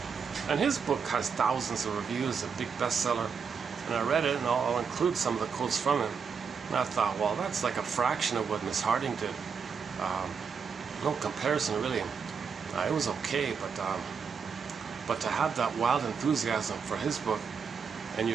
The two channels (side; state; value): left; quieter; 6.1 dB